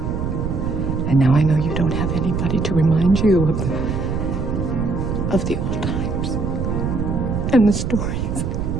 And now I know you don't have anybody to remind you of the old times and the stories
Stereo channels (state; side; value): noise; right; rumble, 2 dB below the sound